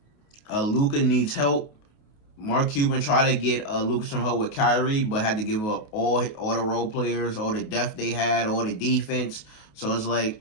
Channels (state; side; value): late; right; 28 ms